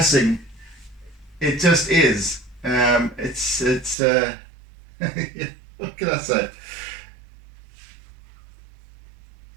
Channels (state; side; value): drops out; left; at 4.0 s